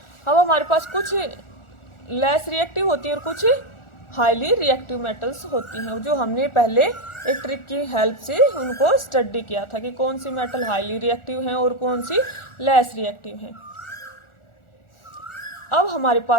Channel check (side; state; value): right; late; 1.4 ms